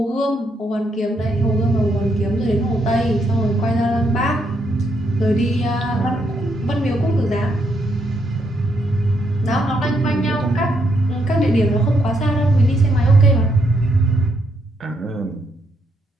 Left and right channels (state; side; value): normal; both; correlation 0.76